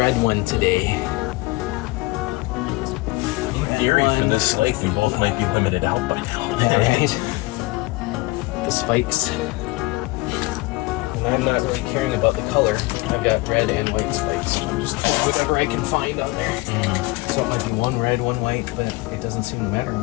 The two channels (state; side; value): quieter; right; 22.6 dB